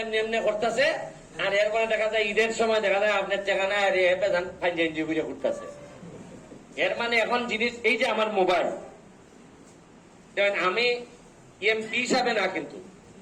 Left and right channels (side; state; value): both; identical; correlation 1.00